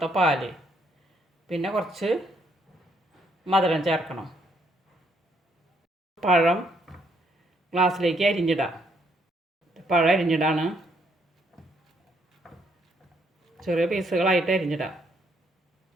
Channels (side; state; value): both; normal; correlation 0.71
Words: പാൽ, പിന്നെ കുറച്ച് മധുരം ചേർക്കണം. പഴം ഗ്ലാസ്സിലേക്ക് അരിഞ്ഞിടാം. പഴം അരിഞ്ഞിടാണ്, ചെറിയ പീസുകളായിട്ട് അരിഞ്ഞിടാം.